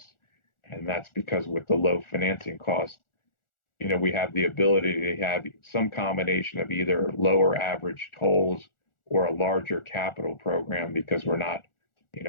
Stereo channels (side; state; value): right; late; 1.4 ms